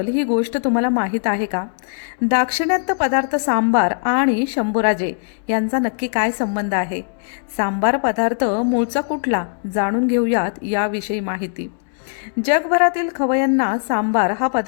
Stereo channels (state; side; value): silent; right; digital silence